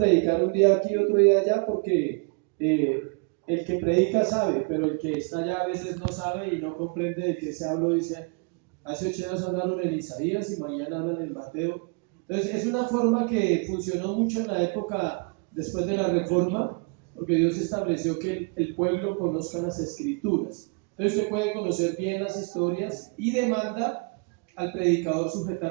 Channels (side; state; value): left; quieter; 33.9 dB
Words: un día aquí y otro día allá porque el que predica sabe, pero el que está allá a veces no sabe y no comprende de qué se habló. Dice, hace 8 días hablaron en Isaías y mañana hablan en Mateo. Entonces es una forma que funcionó mucho en la época después de la Reforma, porque Dios estableció que el pueblo conozca las escrituras. Entonces usted puede conocer bien las historias y demanda al predicador